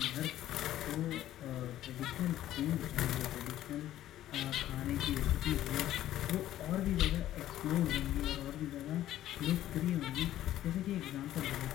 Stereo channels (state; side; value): quieter; right; 13.1 dB